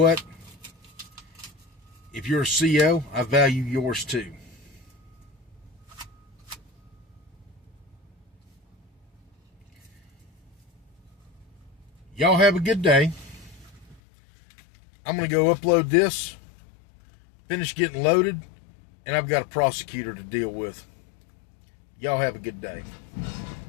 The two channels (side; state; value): right; drops out; at 14.0 s